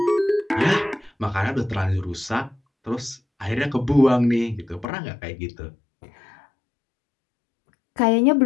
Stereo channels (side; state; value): right; drops out; at 4.9 s